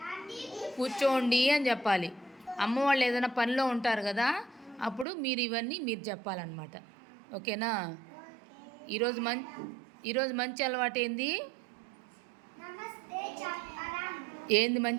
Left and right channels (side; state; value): left; drops out; at 5.1 s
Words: కూర్చోండి అని చెప్పాలి. అమ్మ వాళ్ళు ఏదైనా పనిలో ఉంటారు కదా, అప్పుడు ఇవన్నీ మీరు చెప్పాలన్నమాట. ఓకేనా? ఈరోజు మంచి అలవాటు ఏంది